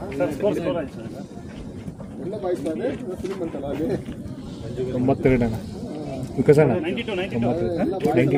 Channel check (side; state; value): both; identical; correlation 1.00